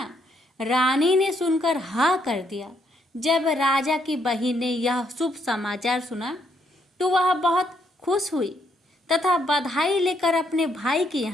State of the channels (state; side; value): normal; both; correlation 0.73